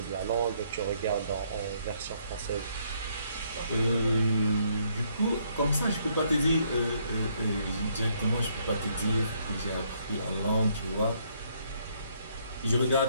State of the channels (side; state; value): both; inverted; correlation -0.70